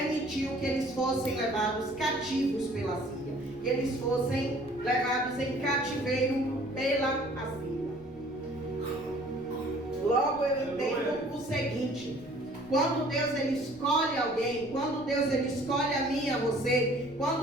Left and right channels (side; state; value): left; noise; rumble, 21 dB below the sound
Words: que eles fossem levados cativos pela Síria, que eles fossem levados em cativeiro pela Assíria. Logo eu entendo o seguinte: quando Deus ele escolhe alguém, quando Deus ele escolhe a mim e a você,